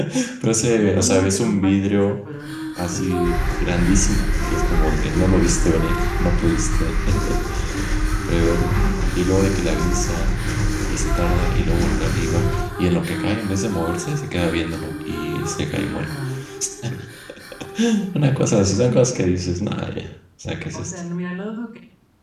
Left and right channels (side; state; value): both; identical; correlation 1.00